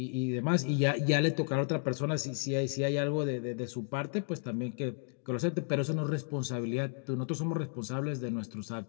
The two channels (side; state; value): right; silent; 56 dB below the other